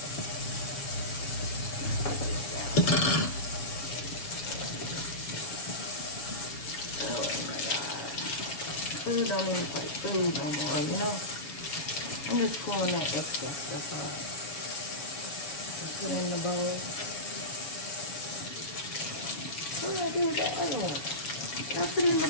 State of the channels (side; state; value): right; late; 7.1 ms